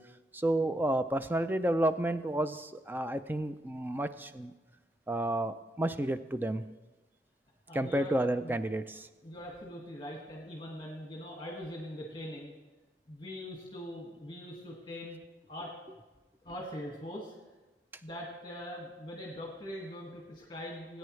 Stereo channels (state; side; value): normal; both; correlation 0.79